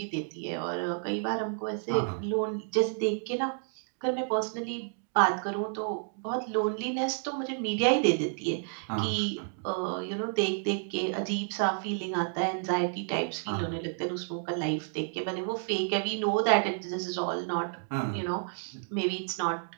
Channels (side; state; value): left; silent; 56 dB below the other